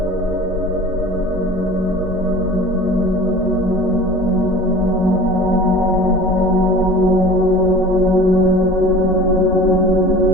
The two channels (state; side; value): normal; both; correlation 0.40